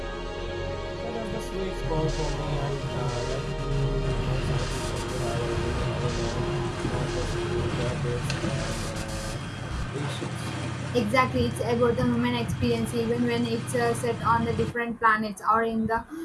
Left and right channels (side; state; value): both; identical; correlation 1.00